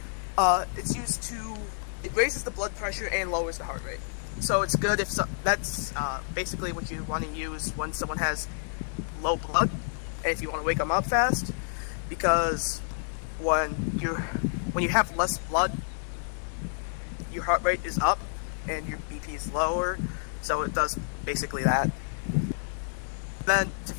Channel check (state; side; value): silent; right; digital silence